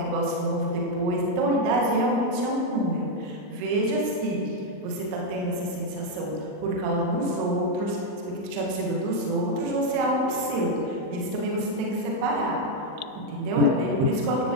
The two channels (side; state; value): left; late; 39 ms